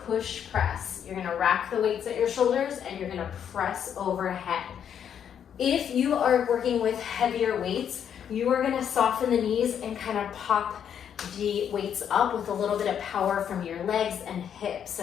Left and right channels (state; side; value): quieter; right; 8.6 dB